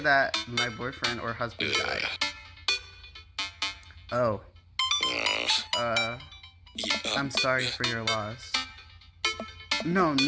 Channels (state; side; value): identical; both; correlation 1.00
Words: my boyfriend or husband died. Oh. I'm sorry for your loss. No,